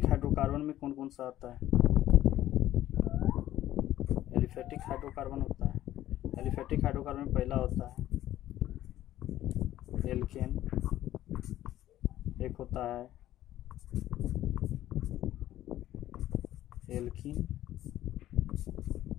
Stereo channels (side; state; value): right; quieter; 13.5 dB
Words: हाइड्रोकार्बन में कौन कौन सा आता है? एलिफेटिक हाइड्रोकार्बन होता है। एलिफेटिक हाइड्रोकार्बन में पहला होता है एल्केन, एक होता है एल्कीन,